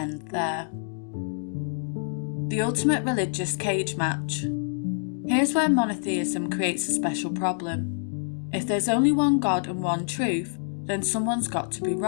there. The ultimate religious cage match. Here's where monotheism creates a special problem. If there's only one God and one truth, then someone's got to be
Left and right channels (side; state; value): right; silent; digital silence